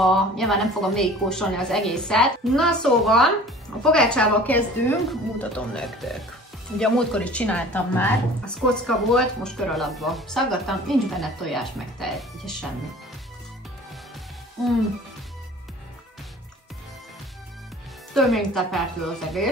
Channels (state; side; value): normal; both; correlation 0.45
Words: nyilván nem fogom végigkóstolni az egészet. Na szóval, a pogácsával kezdünk, mutatom nektek. Ugye a múltkor is csináltam már, az kocka volt, most kör alakba szaggattam, nincs benne tojás meg tej, ugye semmi. Több mint tepertő az